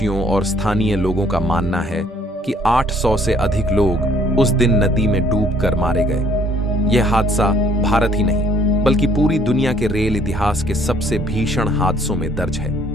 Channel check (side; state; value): both; normal; correlation 0.61